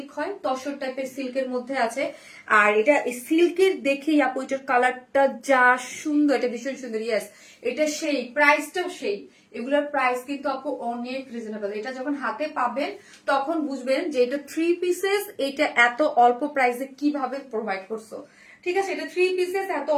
হয়, তসর টাইপের সিল্কের মধ্যে আছে। আর এটা সিল্কের দেখেই আপু এটার কালারটা যা সুন্দর, এটা ভীষণ সুন্দর। ইয়েস এটা সেই, প্রাইসটাও সেই। এগুলোর প্রাইস কিন্তু আপু অনেক রিজনেবল। এটা যখন হাতে পাবেন তখন বুঝবেন যে এটা 3 পিসেস, এটা এত অল্প প্রাইসে কিভাবে প্রোভাইড করছো। ঠিক আছে, এটা 3 পিসেস এত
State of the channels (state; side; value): identical; both; correlation 1.00